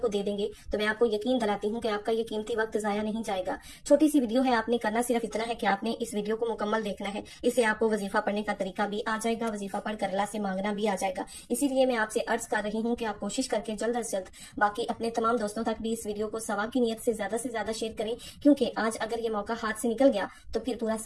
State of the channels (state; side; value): identical; both; correlation 1.00